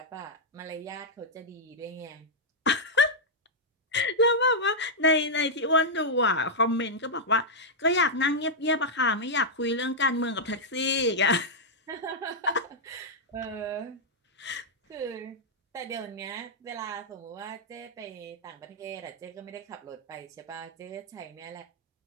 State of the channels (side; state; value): both; normal; correlation -0.05